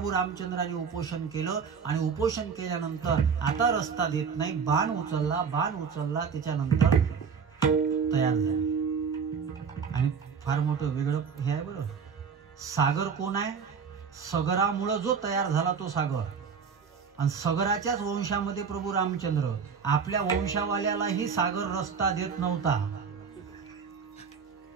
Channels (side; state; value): left; quieter; 6.1 dB